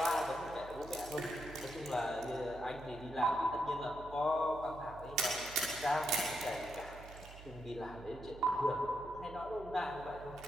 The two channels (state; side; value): noise; right; hum, 15 dB below the sound